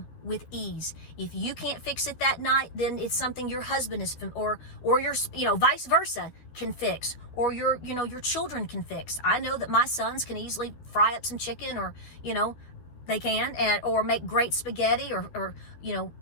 with ease. If you can't fix it that night, then it's something your husband is, or your, vice versa can fix, or your children can fix. I know that my sons can easily fry up some chicken, or, they can, or make great spaghetti, or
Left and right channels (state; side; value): late; right; 12 ms